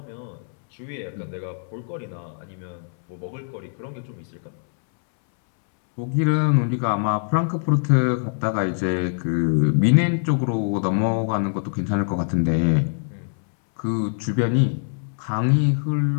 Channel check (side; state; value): right; silent; 63 dB below the other